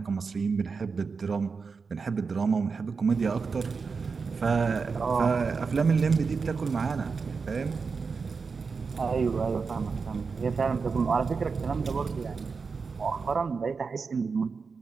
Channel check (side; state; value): left; quieter; 5.0 dB